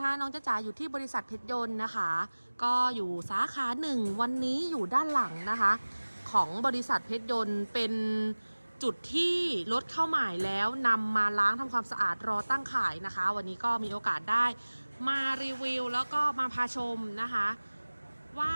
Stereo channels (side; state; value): both; inverted; correlation -1.00